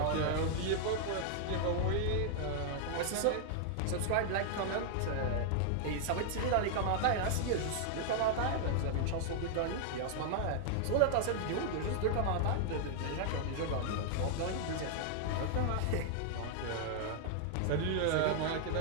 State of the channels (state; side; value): different; both; correlation 0.00